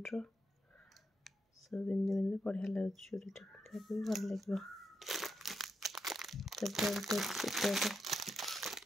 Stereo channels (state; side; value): normal; both; correlation 0.83